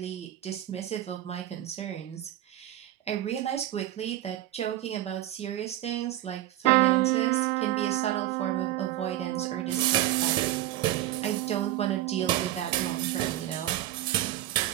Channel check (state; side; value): quieter; left; 14.1 dB